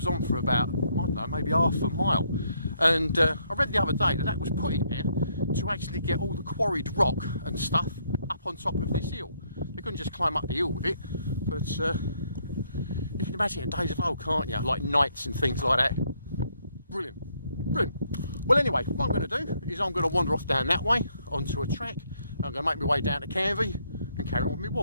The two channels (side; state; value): both; inverted; correlation -0.71